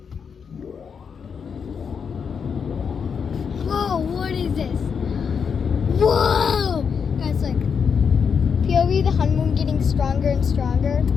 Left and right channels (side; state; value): right; quieter; 6.5 dB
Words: Whoa, what is this? Whoa! Guys, like, POV, the honeymoon getting stronger and stronger.